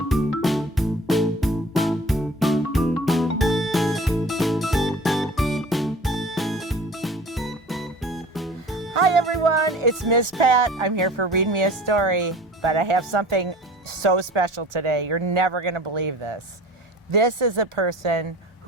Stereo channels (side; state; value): both; normal; correlation 0.43